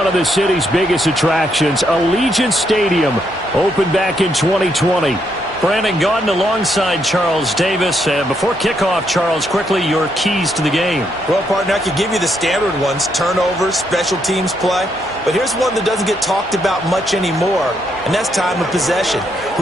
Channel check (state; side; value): normal; both; correlation 0.76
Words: of the city's biggest attractions. Allegiant Stadium opened back in 2020. Brandon Gaudin alongside Charles Davis. Before kickoff, Charles, quickly your keys to the game. Well, partner, I could give you the standard ones, turnovers, special teams play. But here's one that doesn't get talked about much anymore, and that's time of possession.